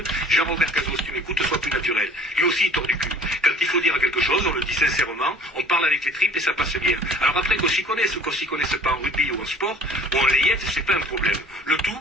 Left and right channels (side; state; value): both; normal; correlation 0.50